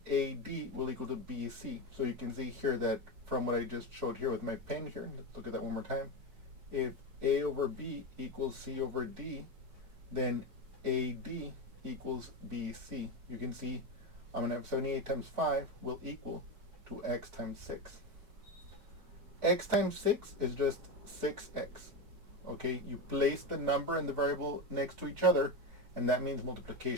AD will equal to BC. So you can see here that from what I just showed here with my pen here, let's look at that one more time. If A over B equals C over D, then AD equals BC. You can see I'm going to have 78 times 5 will equal to x times 6. X times 6 is just 6x. Okay, you place the number and the variable next to each other, and that means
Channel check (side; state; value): left; late; 4.6 ms